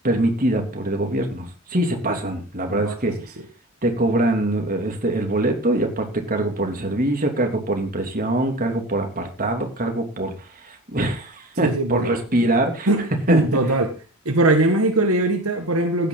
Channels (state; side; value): normal; both; correlation 0.35